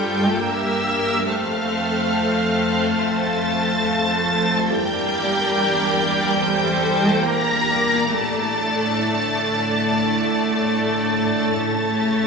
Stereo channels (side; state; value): both; normal; correlation 0.49